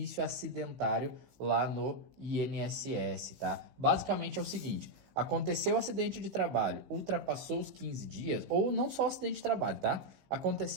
acidentário lá no INSS, tá? Basicamente é o seguinte: aconteceu o acidente de trabalho, ultrapassou os 15 dias, ou não só acidente de trabalho, tá?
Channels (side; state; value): left; late; 16 ms